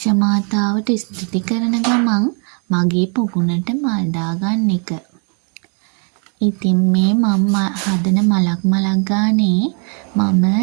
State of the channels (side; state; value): left; quieter; 39.4 dB